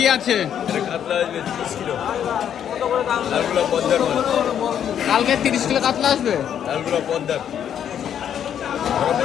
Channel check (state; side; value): quieter; right; 9.3 dB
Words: আছে কাতলা আসবে 30 কিলো লালগুলো পদ্মার মাল কালকে 30 কিলো কাতলা আসবে লালগুলো পদ্মার